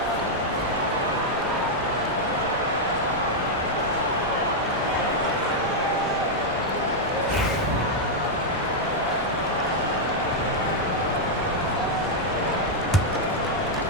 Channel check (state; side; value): normal; both; correlation -0.02